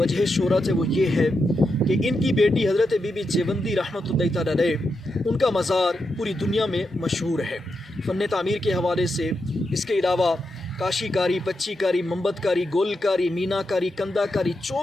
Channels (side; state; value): both; normal; correlation 0.85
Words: शोहरत है वो ये है कि इनकी बेटी हज़रत बीबी जेवंदी रहमतुल्लाह तआला अलैह, उनका मज़ार पूरी दुनिया में मशहूर है फ़न तामीर के हवाले से। इसके अलावा काशीकारी, पच्चीकारी, मोमबतकारी, गोलकारी, मीनाकारी, कंदाकारी,